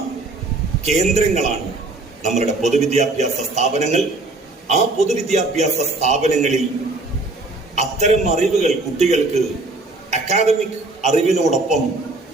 കേന്ദ്രങ്ങളാണ് നമ്മളുടെ പൊതുവിദ്യാഭ്യാസ സ്ഥാപനങ്ങൾ. ആ പൊതുവിദ്യാഭ്യാസ സ്ഥാപനങ്ങളിൽ അത്തരം അറിവുകൾ കുട്ടികൾക്ക് അക്കാദമിക് അറിവിനോടൊപ്പം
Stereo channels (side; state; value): left; quieter; 3.1 dB